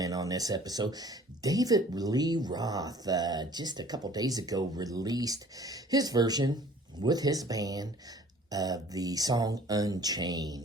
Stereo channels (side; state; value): both; normal; correlation 0.51